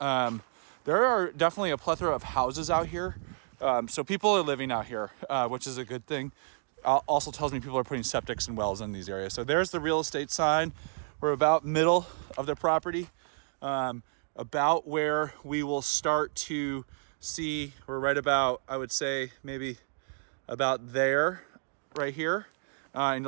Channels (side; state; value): left; silent; digital silence